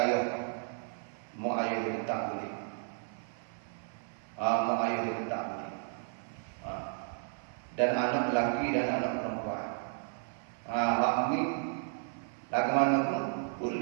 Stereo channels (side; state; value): left; silent; 55 dB below the other